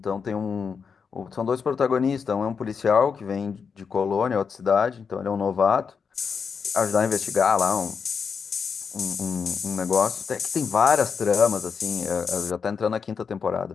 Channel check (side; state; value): right; quieter; 6.0 dB